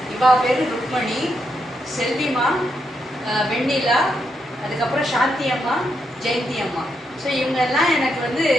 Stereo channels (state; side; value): normal; both; correlation 0.81